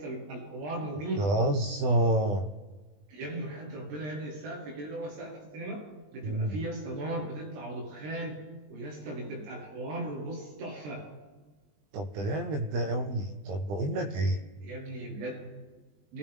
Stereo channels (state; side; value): late; left; 20 ms